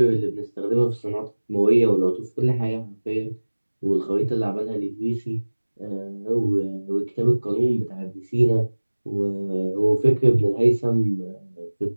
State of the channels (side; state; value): both; inverted; correlation -1.00